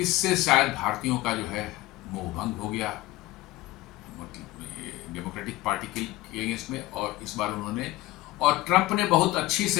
शायद भारतीयों का जो है मोहभंग हो गया मतलब डेमोक्रेटिक पार्टी के अगेंस्ट में। और इस बार उन्होंने, और ट्रंप ने बहुत अच्छी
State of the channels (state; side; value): quieter; right; 18.0 dB